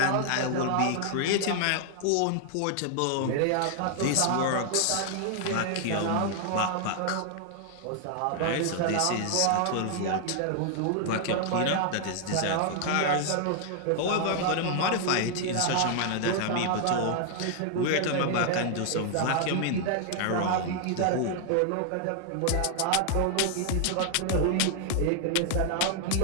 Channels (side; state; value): both; different; correlation 0.00